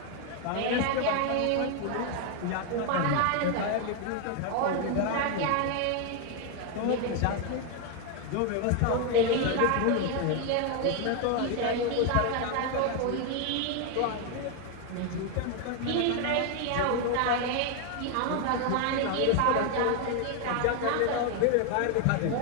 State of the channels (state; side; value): different; both; correlation 0.01